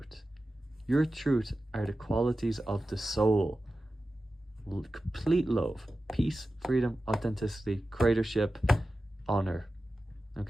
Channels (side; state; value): both; normal; correlation 0.93